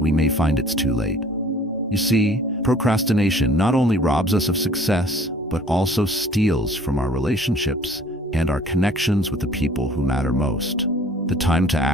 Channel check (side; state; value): both; normal; correlation 0.52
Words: may find it's too late. You see, procrastination not only robs us of success, but also steals from our relationships and our connections with the people who matter most. The time to